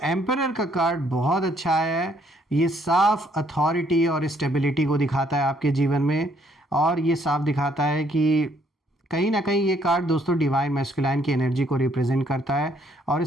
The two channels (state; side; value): normal; both; correlation 0.67